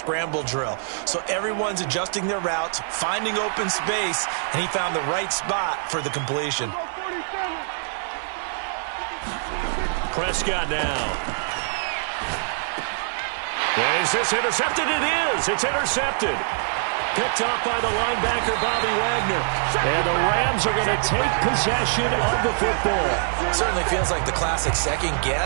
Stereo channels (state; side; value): silent; left; digital silence